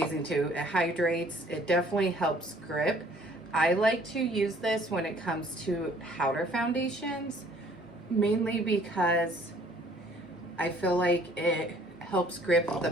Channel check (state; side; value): normal; both; correlation 0.58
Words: too. It hydrates. It definitely helps grip. I like to use this when it comes to powder foundations, mainly because I feel like it helps grip the